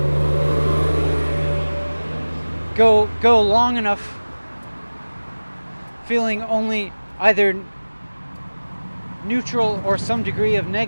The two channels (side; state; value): both; inverted; correlation -1.00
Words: go long enough feeling only either neutral or some degree of